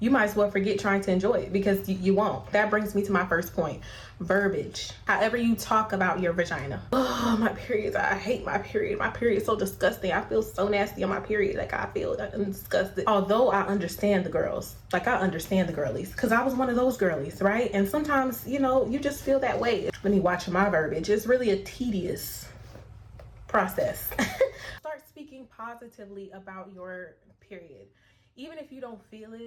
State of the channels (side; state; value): both; identical; correlation 1.00